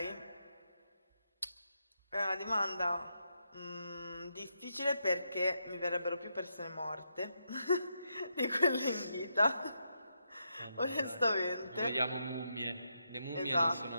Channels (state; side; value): inverted; both; correlation -0.82